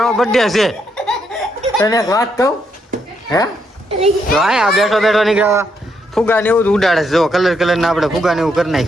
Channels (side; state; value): both; normal; correlation 0.77